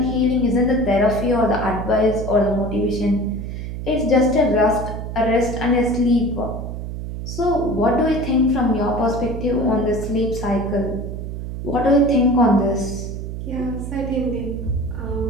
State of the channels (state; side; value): noise; right; hum, 6 dB below the sound